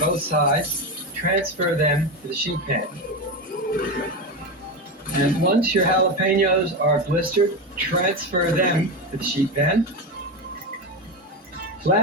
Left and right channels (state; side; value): normal; both; correlation 0.17